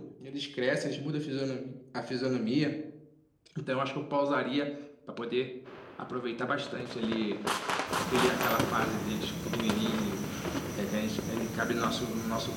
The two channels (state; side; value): identical; both; correlation 1.00